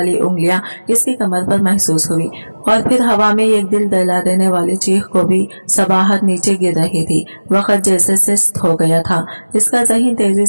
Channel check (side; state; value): both; inverted; correlation -1.00